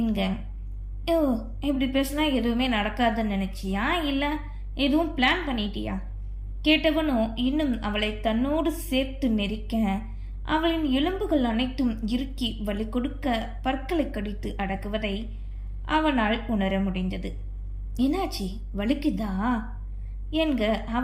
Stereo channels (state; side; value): identical; both; correlation 1.00